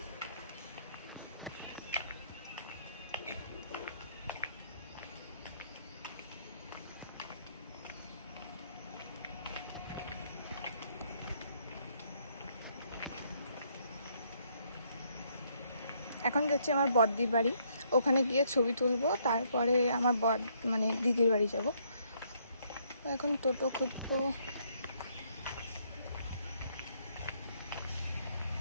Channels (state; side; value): inverted; both; correlation -0.70